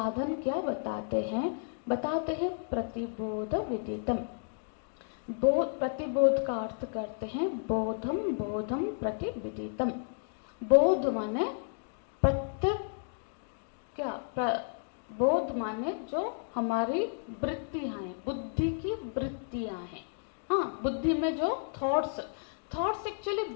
क्या बताते हैं? बताते हैं प्रतिबोध विदितम। प्रतिबोध का अर्थ करते हैं बोधम, बोधम प्रतिविदितम। बोध माने प्रत्येक, बोध माने जो हमारी वृत्तियां हैं, बुद्धि की वृत्तियां हैं। हाँ, बुद्धि में जो थॉट्स एक्चुअली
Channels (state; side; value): silent; right; digital silence